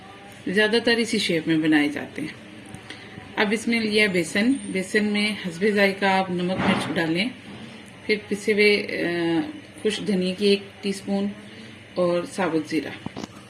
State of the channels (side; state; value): both; identical; correlation 1.00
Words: ज़्यादातर इसी शेप में बनाए जाते हैं। अब इसमें लिया बेसन में हस्बे जायका आप नमक मिर्च डालें। फिर पिसे हुए खुश धनिया की 1 टीस्पून और साबुत ज़ीरा।